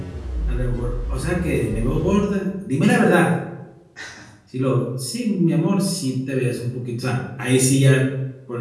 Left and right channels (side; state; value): both; identical; correlation 1.00